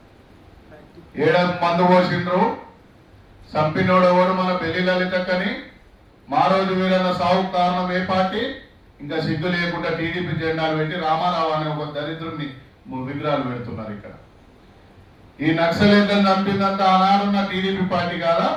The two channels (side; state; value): both; identical; correlation 1.00